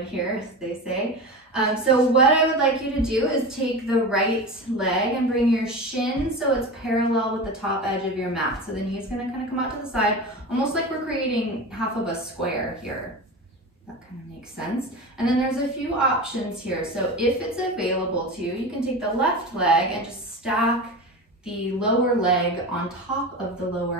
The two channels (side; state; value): both; normal; correlation 0.28